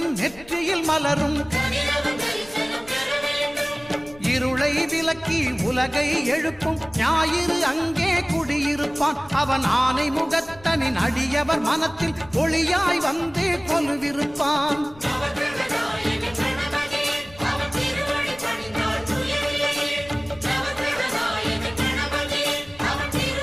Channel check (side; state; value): left; noise; rumble, 22 dB below the sound